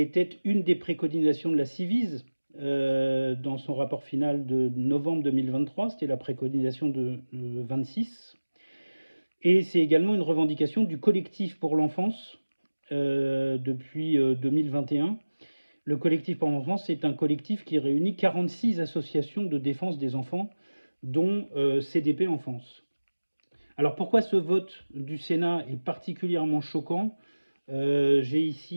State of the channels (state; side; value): inverted; both; correlation -1.00